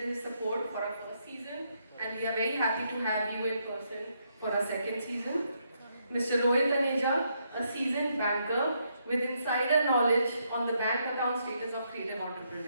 support for our first season. And we are very happy to have you in person for our second season. Mr. Rohit Aneja, a seasoned banker with insider knowledge on the bank account status of creative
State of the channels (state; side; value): inverted; both; correlation -0.76